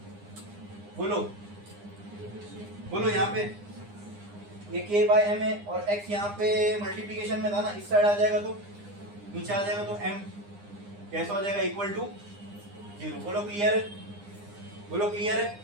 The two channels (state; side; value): late; left; 9.8 ms